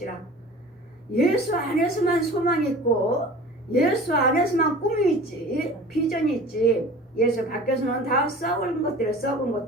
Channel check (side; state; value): both; normal; correlation 0.41